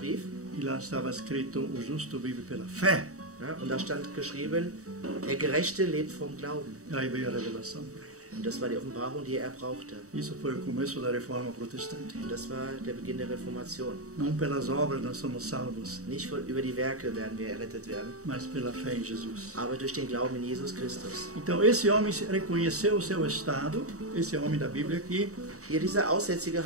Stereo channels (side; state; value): left; late; 0.65 ms